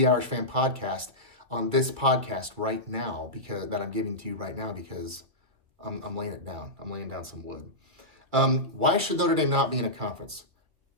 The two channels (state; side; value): late; left; 2.5 ms